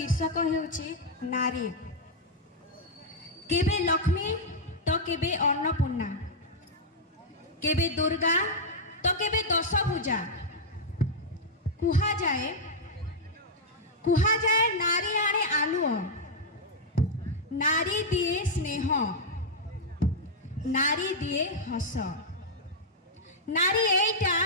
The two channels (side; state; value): both; normal; correlation -0.04